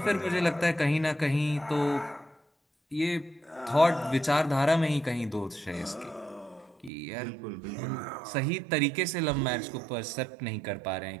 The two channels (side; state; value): left; drops out; at 6.9 s